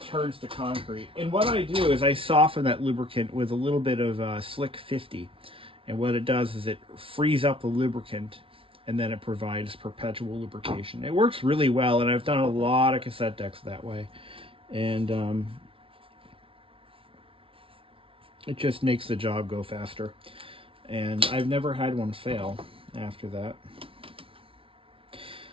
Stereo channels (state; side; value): late; left; 0.26 ms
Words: turns to concrete. And what I do is I soften that lubricant with a little bit of Slick 50. And what it does is it frees up the lubricant, and then it provides perpetual lubrication. It works really well, and I've done a lot of cassette decks that way. And it just makes the job go faster. And I've never had one fail after that.